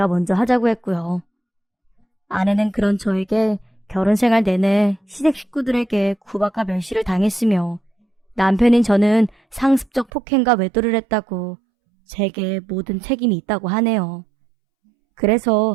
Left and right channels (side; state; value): left; drops out; at 10.1 s